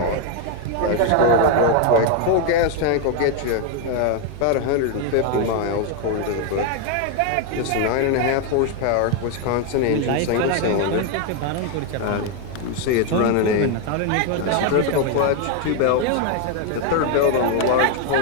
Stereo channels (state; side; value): different; both; correlation 0.01